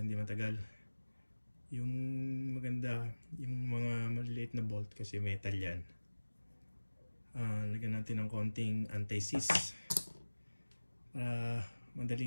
matagal. Yung maganda, yung mga maliliit na bolt kasi metal yan. Lagyan natin ng konting anti-seize para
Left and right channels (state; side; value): inverted; both; correlation -1.00